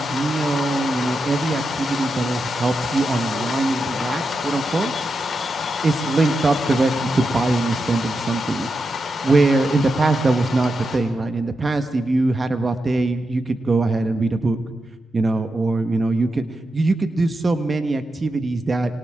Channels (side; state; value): both; normal; correlation 0.87